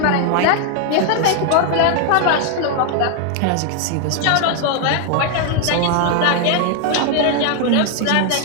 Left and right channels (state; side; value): different; both; correlation 0.00